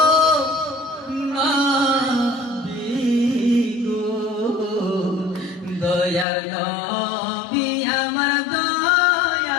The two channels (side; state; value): right; drops out; at 6.2 s